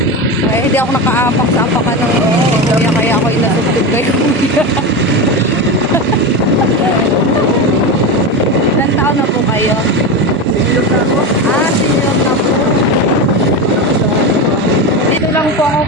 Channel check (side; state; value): both; normal; correlation 0.20